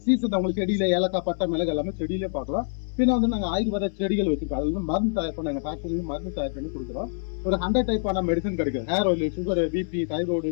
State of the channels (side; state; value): right; silent; 61 dB below the other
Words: சீசன் உங்களுக்கு செடியில ஏலக்காய், பட்டை, மிளகு எல்லாமே செடியிலே பார்க்கலாம். பின்ன வந்து நாங்கள் ஆயுர்வேத செடிகள் வச்சிருக்கோம். அதுல வந்து மருந்து தயார் பண்ண எங்கள் ஃபேக்டரி மருந்து தயார் பண்ணி கொடுக்குறோம். ஒரு 100 டைப்பான மெடிசன் கிடைக்கும். Hair oil, sugar, BP,